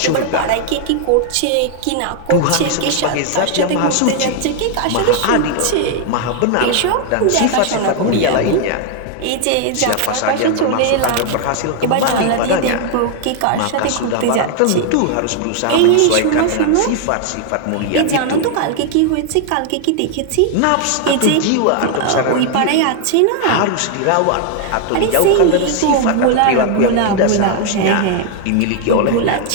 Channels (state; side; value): different; both; correlation 0.00